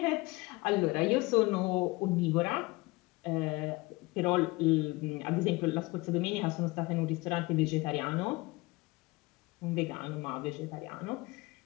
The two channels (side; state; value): right; quieter; 22.9 dB